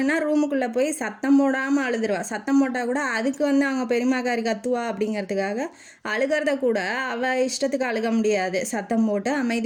ரூமுக்குள்ளே போய் சத்தம் போடாமல் அழுதுருவா. சத்தம் போட்டால் கூட அதுக்கு வந்து அவங்க பெரியம்மாக்காரி கத்துவா அப்படிங்கிறதுக்காக அழுகிறத கூட அவள் இஷ்டத்துக்கு அழுக முடியாது. சத்தம் போட்டு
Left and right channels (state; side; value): identical; both; correlation 1.00